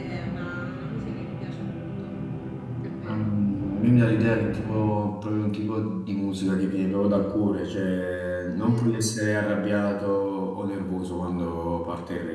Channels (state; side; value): identical; both; correlation 1.00